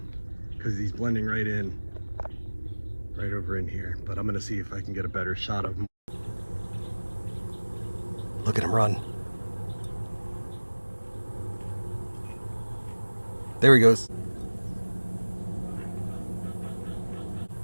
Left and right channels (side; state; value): both; inverted; correlation -1.00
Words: because he's blending right in. Right over in here. But I'm gonna see if I can get a better shot of him. Look at him run. There he goes.